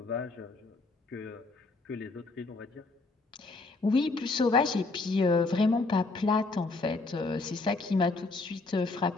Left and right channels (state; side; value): quieter; right; 3.5 dB